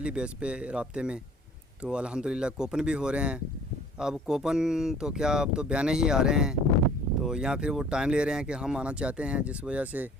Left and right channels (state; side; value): normal; both; correlation 0.52